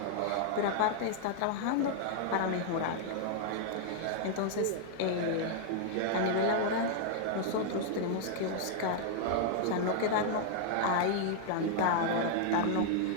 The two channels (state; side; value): different; both; correlation -0.01